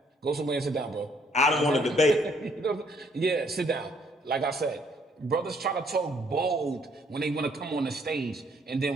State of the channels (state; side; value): normal; both; correlation 0.66